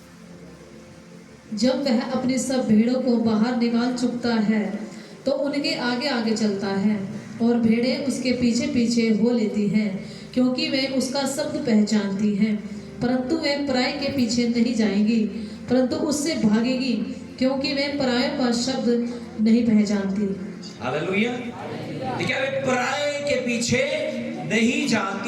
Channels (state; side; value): identical; both; correlation 1.00